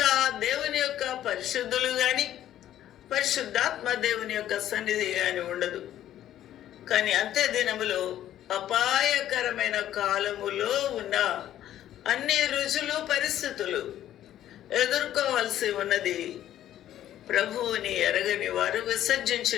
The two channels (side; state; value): right; quieter; 12.1 dB